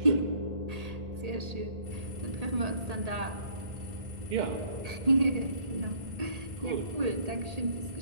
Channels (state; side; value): late; left; 1.8 ms